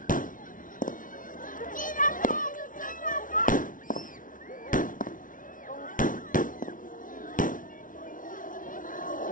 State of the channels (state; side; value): late; right; 0.38 ms